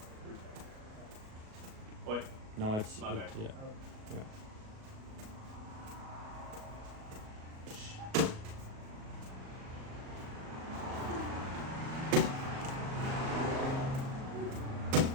Wait, No, it's My bad. Yeah. Yeah.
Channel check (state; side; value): late; left; 37 ms